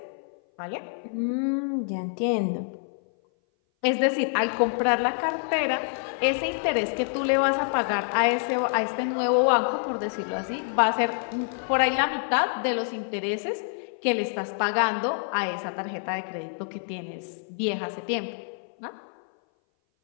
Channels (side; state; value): right; silent; 58 dB below the other